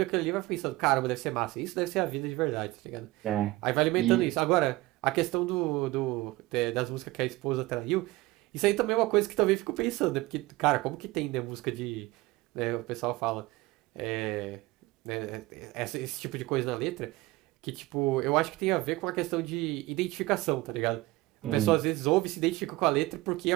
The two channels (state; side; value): quieter; left; 19.8 dB